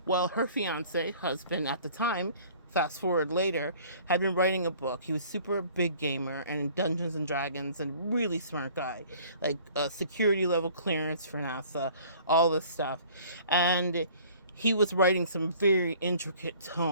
Well, her husband at the time, fast forward later, had been writing a book. He was super big gamer and in Dungeons and Dragons and really smart guy, like a security level clearance for NASA, all this stuff. And he was writing some very intricate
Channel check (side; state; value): both; inverted; correlation -0.51